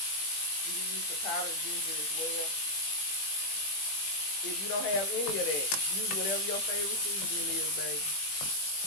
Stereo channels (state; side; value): late; right; 20 ms